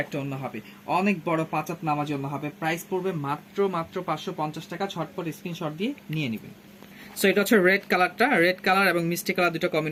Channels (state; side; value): identical; both; correlation 1.00